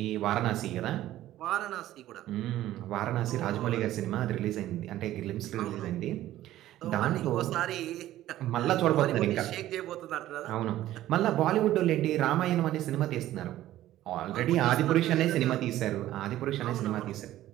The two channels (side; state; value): left; quieter; 14.1 dB